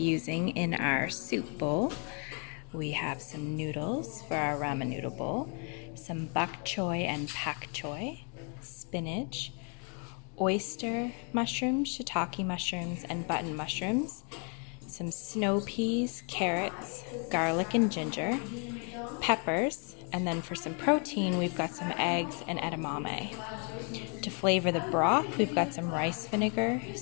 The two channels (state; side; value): quieter; right; 38.2 dB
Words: in our soup bowl. We have some noodles for our ramen noodle bowl, some bok choy and pak choy, spinach, oyster mushrooms, shiitake mushrooms, and button mushrooms, some snow peas, carrots, garlic and ginger, peppers, and then for some protein we've got some eggs and edamame. To flavor the broth, we've got some rice vinegar,